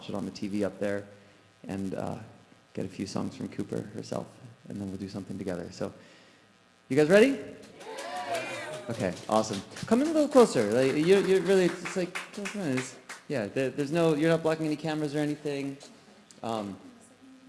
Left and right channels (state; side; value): identical; both; correlation 1.00